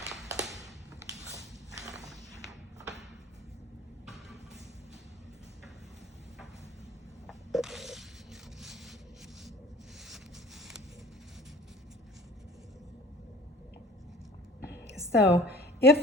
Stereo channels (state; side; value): normal; both; correlation 0.46